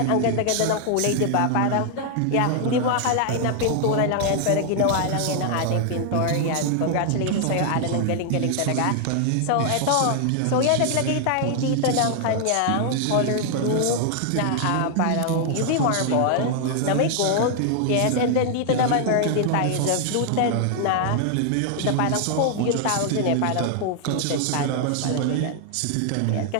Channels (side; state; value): both; different; correlation 0.00